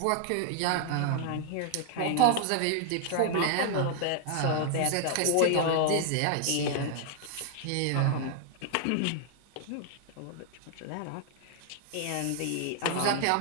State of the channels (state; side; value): different; both; correlation 0.00